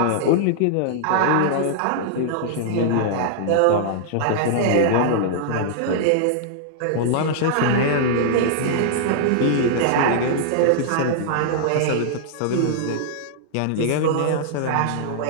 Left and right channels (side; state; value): both; different; correlation -0.01